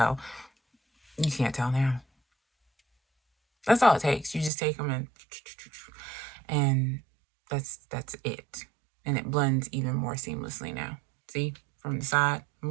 you can't tell now. That's all it takes. You just take them and that's it. And it blends even more seamlessly now. See, from the side, I'm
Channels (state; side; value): drops out; left; at 4.5 s